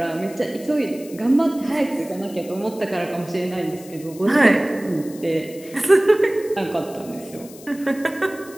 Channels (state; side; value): noise; left; hiss, 19 dB below the sound